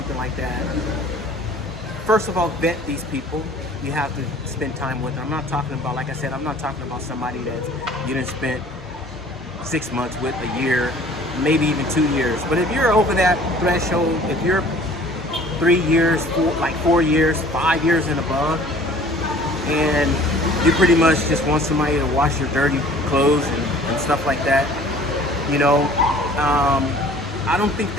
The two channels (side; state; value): both; normal; correlation 0.50